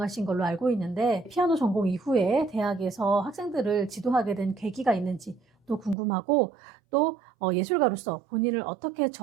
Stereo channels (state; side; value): drops out; left; at 6.0 s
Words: 걸로 알고 있는데 피아노 전공 이후에 대학에서 학생들을 지도하게 된 계기가 있는지 또 궁금하고 또 예술가로서 본인을 어떻게